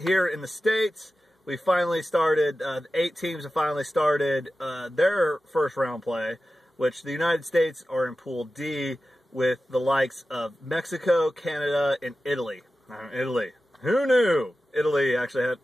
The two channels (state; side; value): normal; both; correlation 0.94